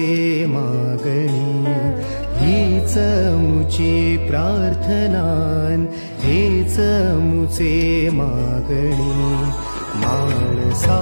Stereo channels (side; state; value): both; inverted; correlation -1.00